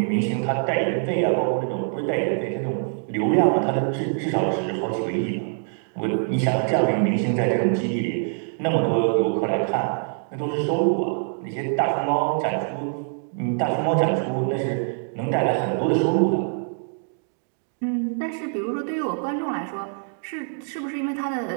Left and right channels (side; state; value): left; silent; digital silence